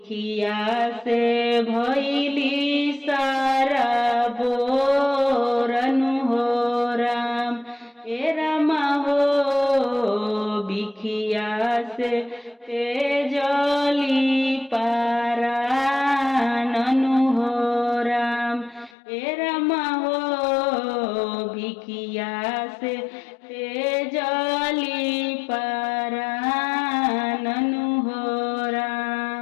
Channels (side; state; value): right; drops out; at 18.9 s